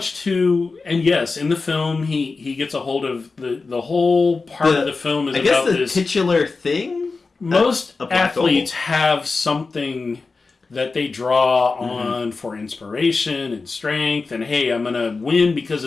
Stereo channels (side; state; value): right; quieter; 4.1 dB